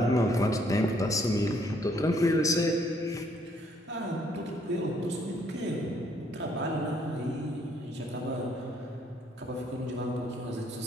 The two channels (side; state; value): both; normal; correlation 0.67